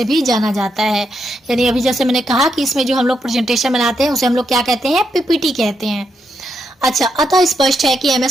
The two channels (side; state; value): both; normal; correlation 0.81